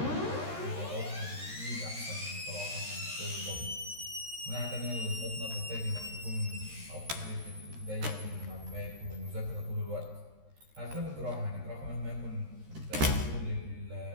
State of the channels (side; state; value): left; late; 13 ms